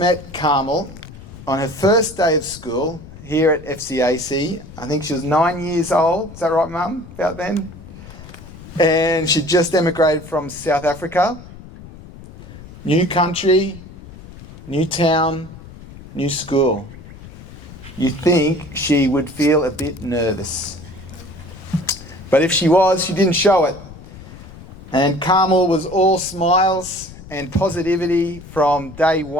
Carmel on her first day of school here at FCAC. I think she was 9 years old. Is that right, Mum? About then? And she just emigrated from South Africa. New country, new town, new school. You think she would feel a bit nervous. But if she was, she didn't show it. And Carmel was all smiles and positivity from day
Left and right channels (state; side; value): noise; left; rumble, 17 dB below the sound